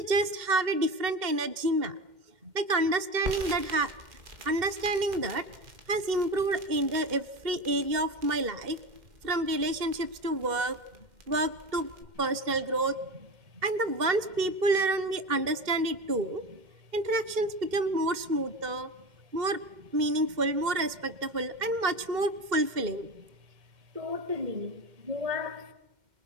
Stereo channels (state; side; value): late; left; 2.1 ms